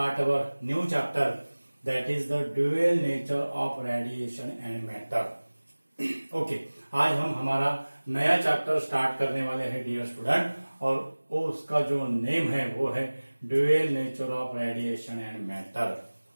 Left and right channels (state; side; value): inverted; both; correlation -1.00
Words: our new chapter that is the dual nature of radiation and matter. Okay आज हम हमारा नया chapter start करने वाले हैं dear student और वो उसका जो नेम है वो है dual nature of radiation and matter.